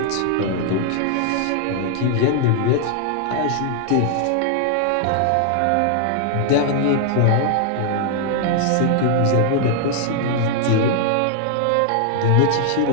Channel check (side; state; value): both; different; correlation 0.00